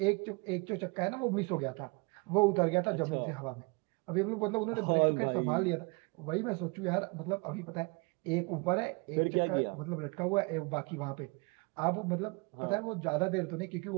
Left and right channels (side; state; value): left; quieter; 30.0 dB